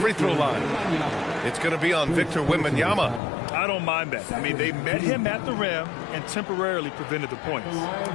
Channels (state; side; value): drops out; right; at 3.2 s